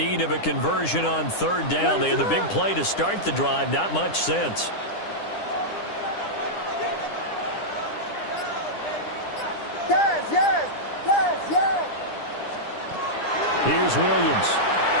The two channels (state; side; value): late; right; 9.9 ms